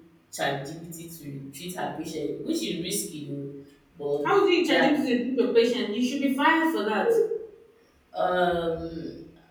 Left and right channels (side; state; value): both; identical; correlation 1.00